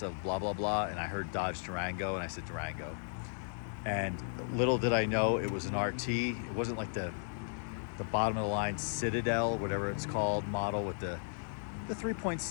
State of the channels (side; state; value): right; silent; digital silence